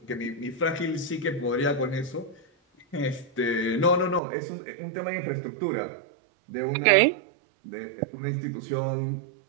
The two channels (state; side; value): drops out; left; at 4.2 s